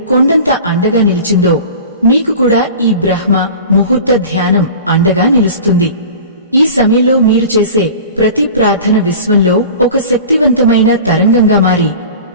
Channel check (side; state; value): both; inverted; correlation -0.38